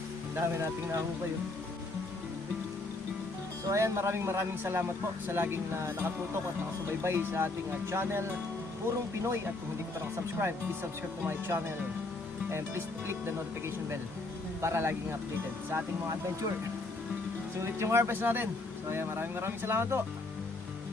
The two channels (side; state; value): right; quieter; 3.1 dB